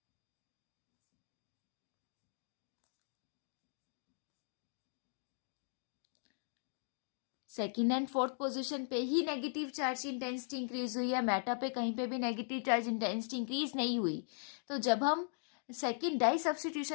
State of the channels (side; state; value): right; silent; digital silence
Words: Second and fourth position पे ही नेगेटिव चार्ज इंटेंसिटी इंक्रीज हुई है, मेटा पे कहीं पे भी नेगेटिव चार्ज इंटेंसिटी इंक्रीज नहीं हुई. तो जब हम सेकेंड डाई